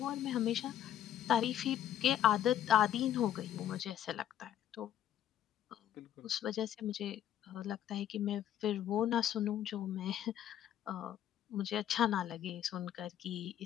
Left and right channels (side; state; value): right; quieter; 11.0 dB